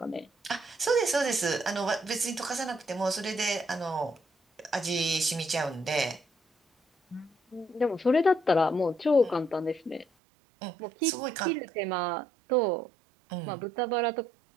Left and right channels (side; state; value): left; drops out; at 10.1 s